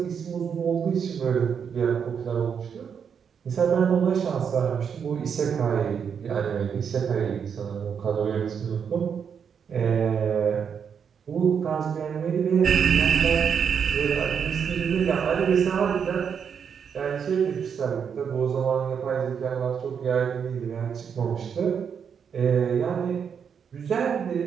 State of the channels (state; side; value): quieter; left; 7.1 dB